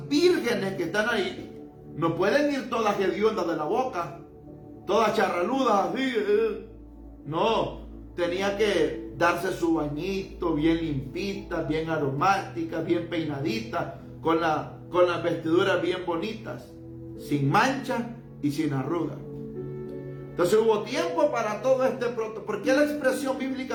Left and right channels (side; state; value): both; identical; correlation 1.00